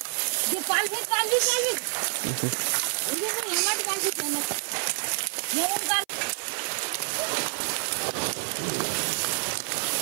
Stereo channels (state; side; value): silent; left; 55 dB below the other